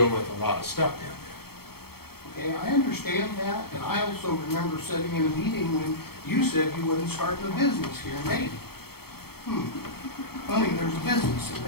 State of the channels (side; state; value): right; late; 0.95 ms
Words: with a lot of stuff down Okay, I understand that, and I also remember sitting in a meeting when you said you wasn't starting a business here in Dayton. Funny, there's a business